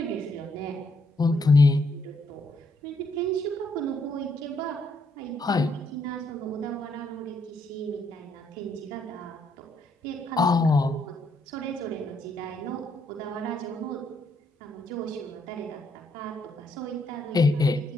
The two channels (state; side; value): normal; both; correlation 0.74